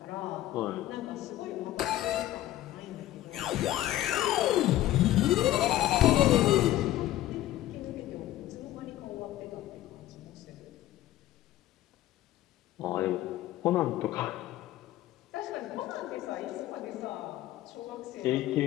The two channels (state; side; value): quieter; right; 14.4 dB